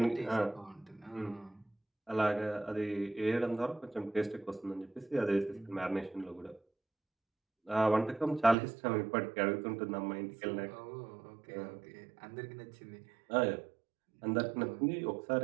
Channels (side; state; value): left; drops out; at 8.6 s